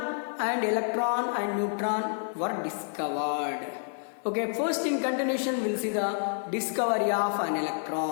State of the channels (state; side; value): silent; right; digital silence